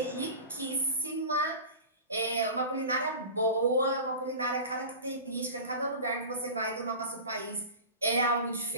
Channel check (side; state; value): both; inverted; correlation -0.33